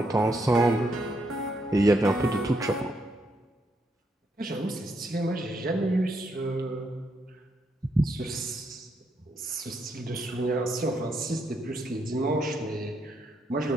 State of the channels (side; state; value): both; normal; correlation 0.77